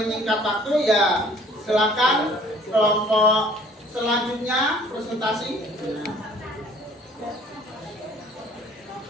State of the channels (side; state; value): both; normal; correlation 0.54